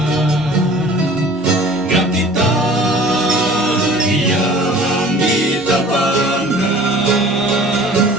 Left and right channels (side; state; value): both; normal; correlation 0.47